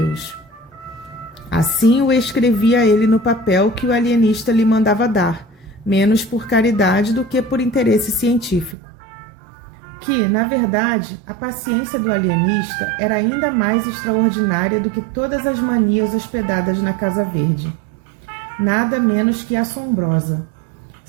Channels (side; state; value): left; drops out; at 8.8 s